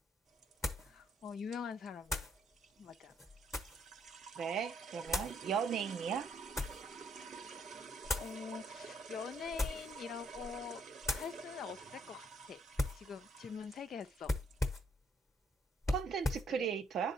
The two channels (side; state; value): both; normal; correlation 0.71